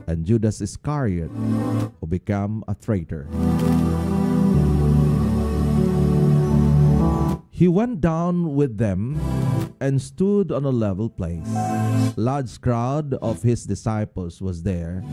and Judas Iscariot, who became a traitor. He went down with them and stood on a level place. A large crowd of his disciples was there,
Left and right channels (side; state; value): both; identical; correlation 1.00